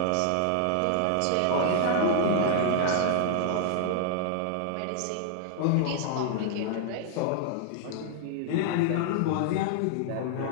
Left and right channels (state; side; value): different; both; correlation 0.00